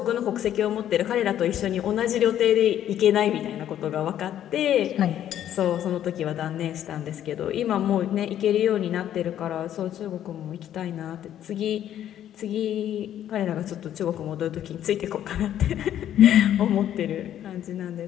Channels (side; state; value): right; quieter; 11.0 dB